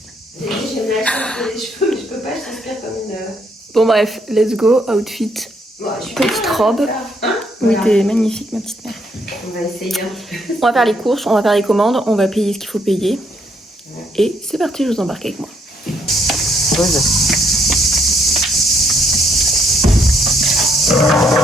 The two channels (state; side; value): normal; both; correlation 0.71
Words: J'ai dit, j'ai mal les cheveux, mais je peux pas, je transpire comme une... Bon bref, let's go, outfit. Bon, Petite robe. Hein, Oui, voilà. t'es magnifique, ma petite mère. On va essayer un petit peu. On va faire les courses, on va faire les commandes, on va payer ce qu'il faut payer. Et c'est parti, je vous embarque avec moi. Pose. Quand